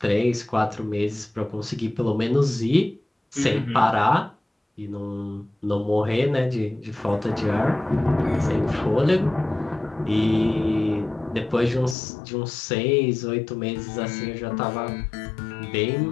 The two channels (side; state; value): right; drops out; at 12.0 s